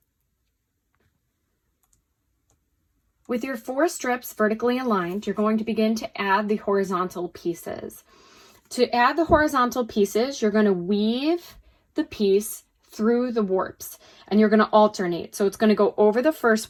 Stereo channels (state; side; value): identical; both; correlation 1.00